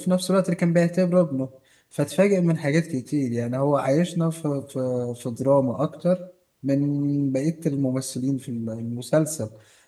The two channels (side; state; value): both; identical; correlation 1.00